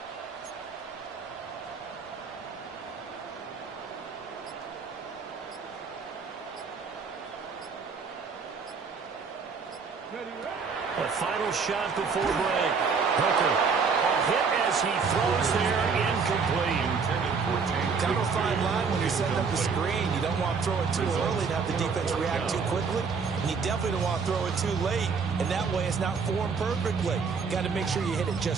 A final shot before break. Hooker. A hit as he throws there, incomplete. Kind of a fine line when you're setting up the screen. You don't want to throw it too early and have the defense react too quickly. And you definitely don't want to throw it too late. And that way it's not formed perfectly. Got to make sure you hit it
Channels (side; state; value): left; quieter; 5.4 dB